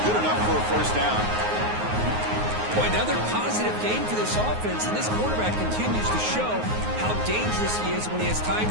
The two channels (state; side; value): late; left; 9.5 ms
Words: good enough for a first down. Boy, another positive gain for this offense, and this quarterback continues to show how dangerous he is when he has time